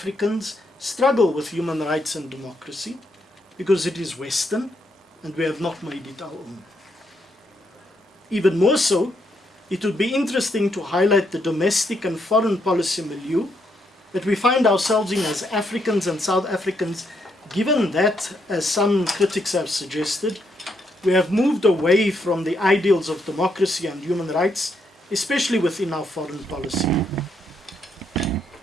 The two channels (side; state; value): both; normal; correlation 0.77